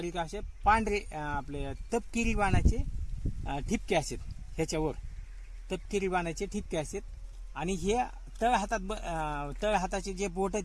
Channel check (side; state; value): both; identical; correlation 1.00